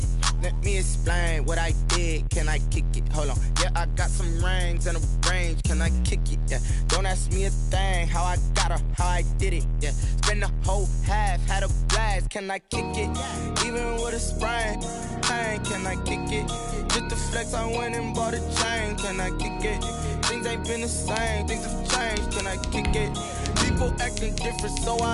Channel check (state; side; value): identical; both; correlation 1.00